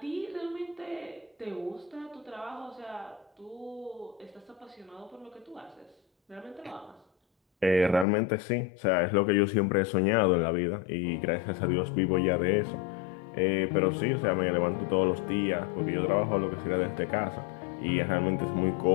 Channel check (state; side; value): drops out; right; at 8.1 s